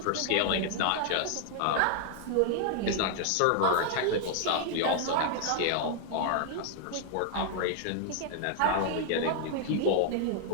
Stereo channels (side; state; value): both; different; correlation -0.01